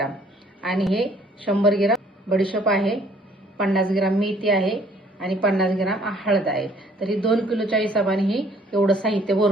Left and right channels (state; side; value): normal; both; correlation 0.59